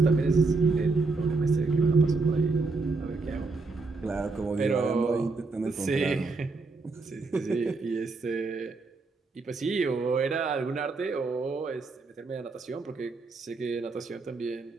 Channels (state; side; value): quieter; left; 3.9 dB